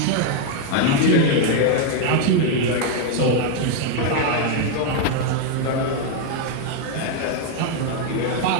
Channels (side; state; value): both; different; correlation 0.01